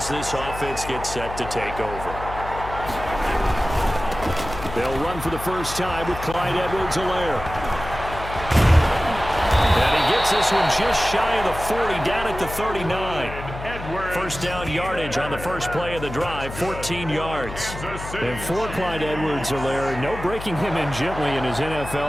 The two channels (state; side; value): noise; left; hum, 10 dB below the sound